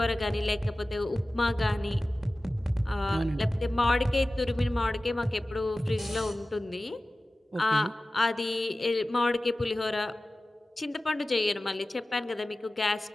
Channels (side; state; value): both; normal; correlation 0.96